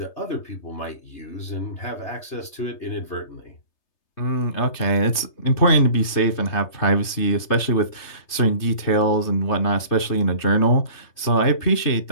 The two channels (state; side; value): late; right; 3.3 ms